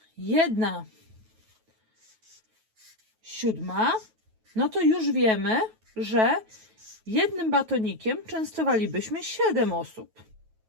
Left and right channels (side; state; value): left; late; 9.2 ms